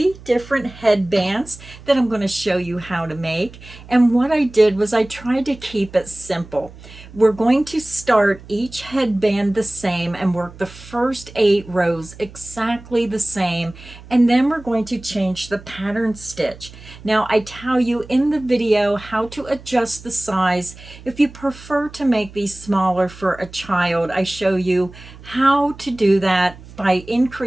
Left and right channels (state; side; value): noise; right; hum, 19 dB below the sound